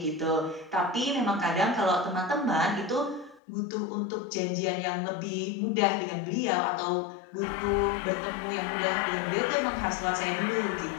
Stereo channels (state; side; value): drops out; right; at 3.4 s